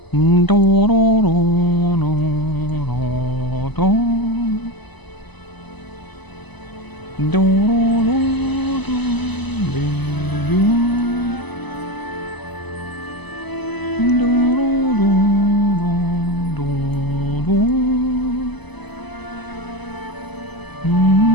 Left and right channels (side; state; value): right; late; 1.0 ms